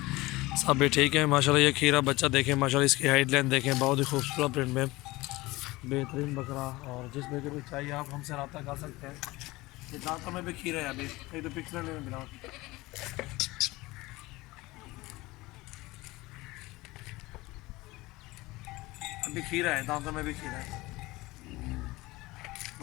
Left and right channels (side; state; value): right; quieter; 20.6 dB